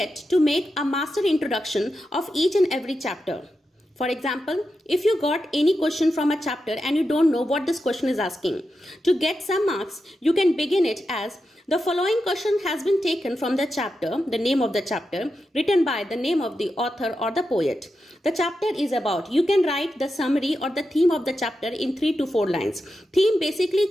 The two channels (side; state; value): both; normal; correlation 0.89